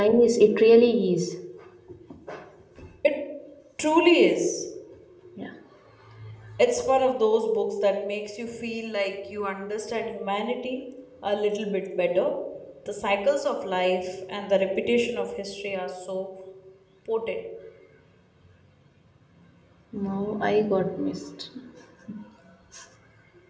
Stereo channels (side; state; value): both; identical; correlation 1.00